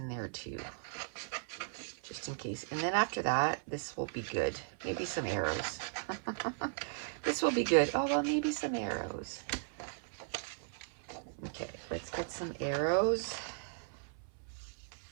there too, just in case. And then after that, this will be good. Maybe some arrows. This will be good. Oh, well, maybe some arrows. Okay, let's get some arrows.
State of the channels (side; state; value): left; silent; 53 dB below the other